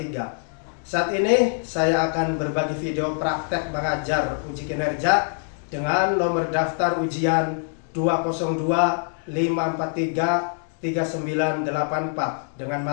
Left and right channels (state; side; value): silent; right; 62 dB below the other